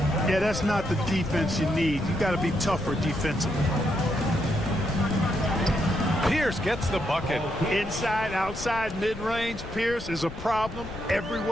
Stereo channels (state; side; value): noise; left; rumble, 11 dB below the sound